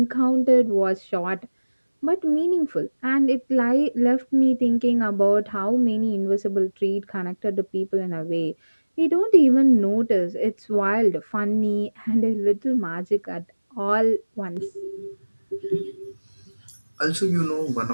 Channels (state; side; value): inverted; both; correlation -1.00